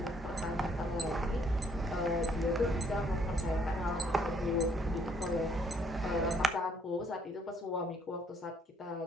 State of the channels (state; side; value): normal; both; correlation 0.67